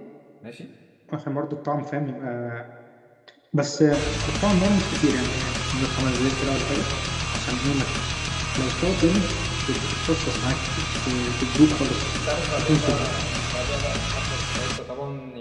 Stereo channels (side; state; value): both; identical; correlation 1.00